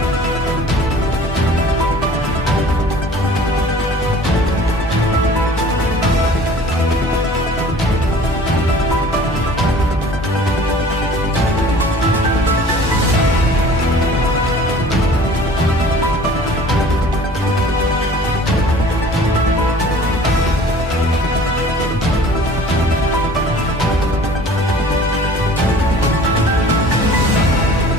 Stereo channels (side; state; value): both; normal; correlation 0.47